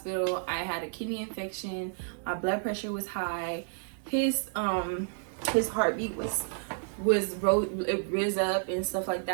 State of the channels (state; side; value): silent; left; 57 dB below the other